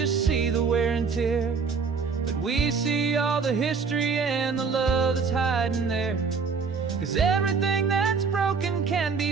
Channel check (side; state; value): left; quieter; 5.3 dB